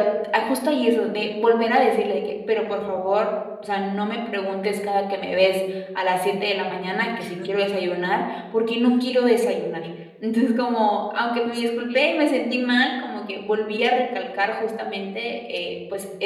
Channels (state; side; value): identical; both; correlation 1.00